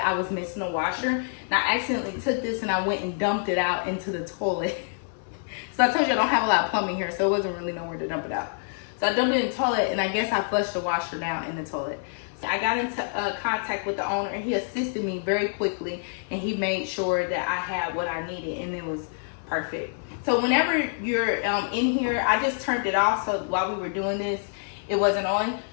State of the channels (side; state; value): right; silent; 60 dB below the other